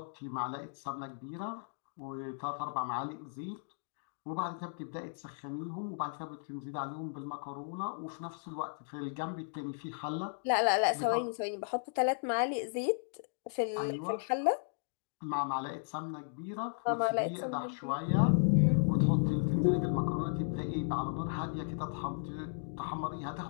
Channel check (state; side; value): silent; right; digital silence